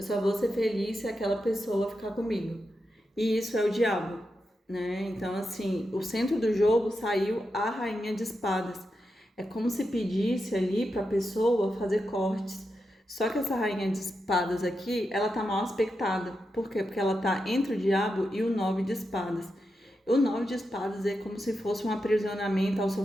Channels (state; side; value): normal; both; correlation 0.87